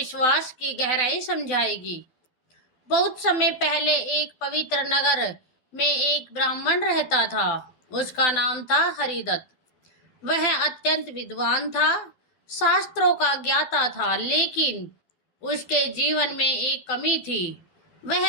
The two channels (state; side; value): late; right; 12 ms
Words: की गहराई समझाएगी। बहुत समय पहले एक पवित्र नगर में एक ब्राह्मण रहता था। उसका नाम था हरिदत्त। वह अत्यंत विद्वान था, शास्त्रों का ज्ञाता था, लेकिन उसके जीवन में एक कमी थी।